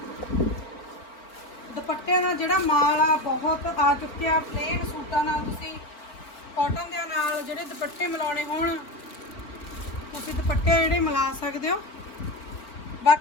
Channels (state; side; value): late; right; 4.4 ms